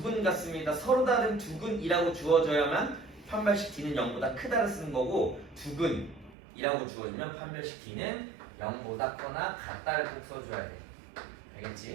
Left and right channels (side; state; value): left; drops out; at 6.4 s